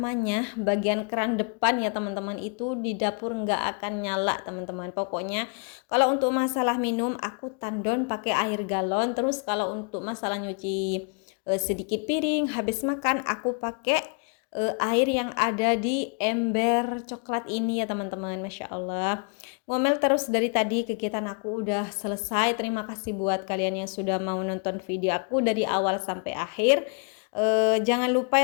bagian keran depan ya teman-teman, itu di dapur nggak akan nyala teman-teman. Pokoknya kalau untuk masalah minum aku tandon pakai air galon. Terus kalau untuk masalah nyuci sedikit piring habis makan, aku pakai air yang ada di ember coklat ini ya teman-teman. Masya Allah, ngomel terus dari tadi, kegiatan aku udah selesai. Terima kasih buat kalian yang sudah mau nonton video aku dari awal sampai akhir. Jangan lupa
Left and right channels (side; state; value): right; quieter; 38.4 dB